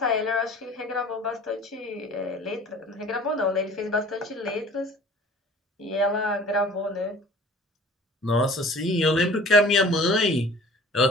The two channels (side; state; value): both; normal; correlation 0.48